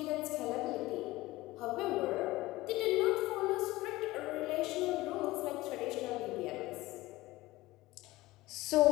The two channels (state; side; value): quieter; right; 18.9 dB